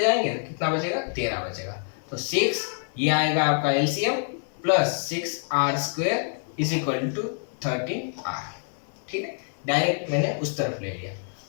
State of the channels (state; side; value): silent; right; 61 dB below the other